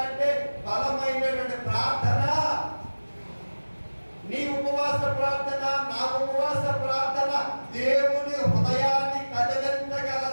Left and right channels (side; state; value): both; inverted; correlation -1.00